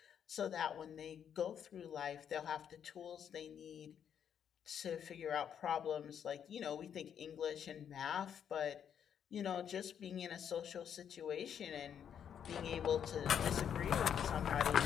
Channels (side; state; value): right; quieter; 8.5 dB